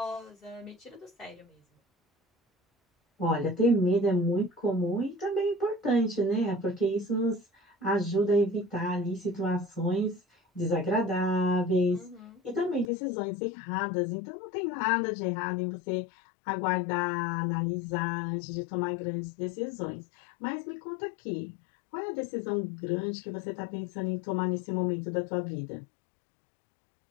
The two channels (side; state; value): right; drops out; at 12.9 s